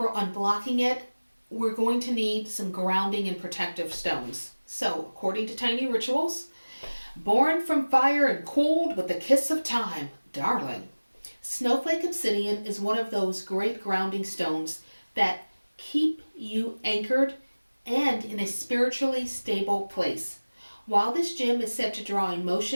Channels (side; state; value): both; inverted; correlation -1.00